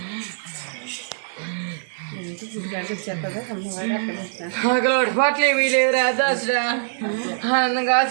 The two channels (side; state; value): left; silent; 55 dB below the other